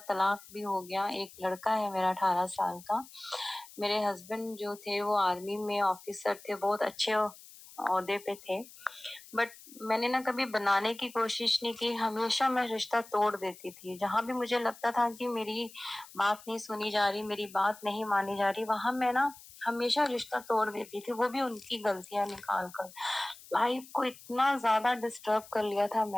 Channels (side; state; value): left; noise; hiss, 20 dB below the sound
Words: भी हो गया। एक लड़का है मेरा 18 साल का। मेरे हस्बैंड जो थे वो आर्मी में ऑफिसर थे, बहुत अच्छे ओहदे पे थे। बट मैंने ना कभी बनाने की कोशिश नहीं की। हमेशा मैं रिश्ता तोड़ देती थी। जहां भी मुझे लगता था कि मेरी बात नहीं सुनी जा रही, मेरी बात नहीं मानी जा रही, वहां मैं ना हमेशा रिश्ता तोड़ देती थी, वो भी उनकी गलतियां निकाल कर। लाइफ को इतना ज्यादा डिस्टर्ब कर लिया था